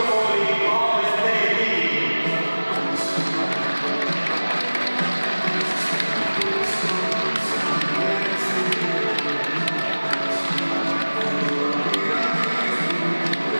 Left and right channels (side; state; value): both; inverted; correlation -1.00